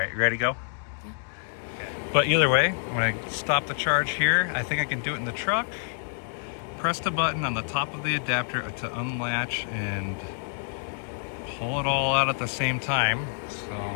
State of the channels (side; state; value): right; silent; digital silence